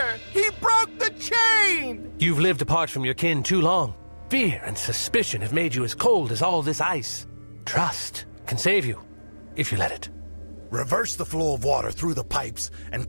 He broke the chain! You've lived apart from your kin too long. Fear and suspicion have made you as cold as all this ice. Trust can save you, if you let it. Reverse the flow of water through the pipes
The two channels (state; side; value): inverted; both; correlation -1.00